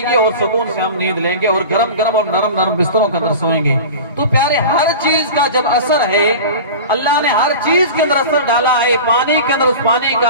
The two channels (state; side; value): inverted; both; correlation -0.33